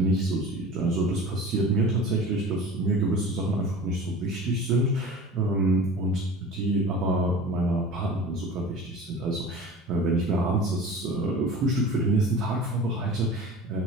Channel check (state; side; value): normal; both; correlation 0.38